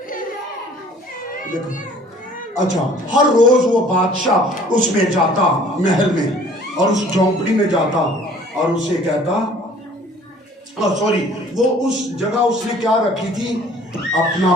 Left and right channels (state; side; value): normal; both; correlation 0.53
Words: دیکھو, اچھا ہر روز وہ بادشاہ اس میں جاتا, محل میں, اور اس جھونپڑی میں جاتا اور اسے کہتا, وہ اس جگہ اس نے کیا رکھی تھی, اپنا